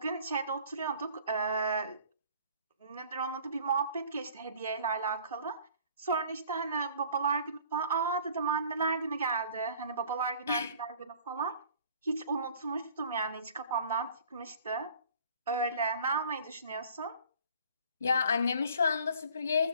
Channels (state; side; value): inverted; both; correlation -0.52